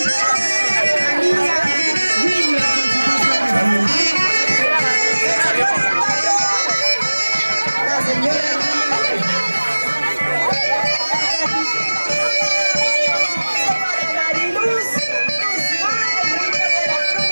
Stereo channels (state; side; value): inverted; both; correlation -1.00